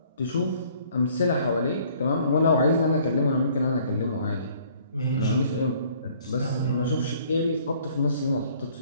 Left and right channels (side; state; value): both; inverted; correlation -0.58